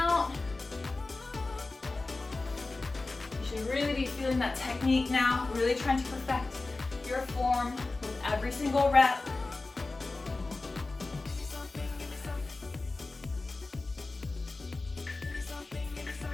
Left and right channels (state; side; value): quieter; right; 3.4 dB